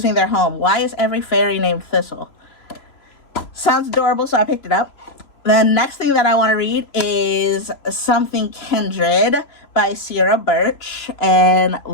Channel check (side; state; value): right; late; 3.0 ms